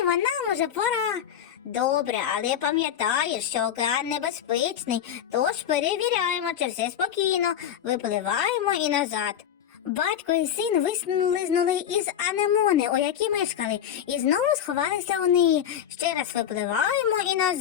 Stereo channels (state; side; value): quieter; right; 9.6 dB